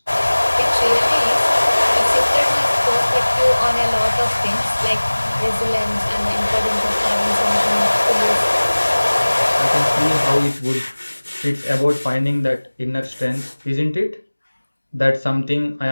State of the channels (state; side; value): inverted; both; correlation -1.00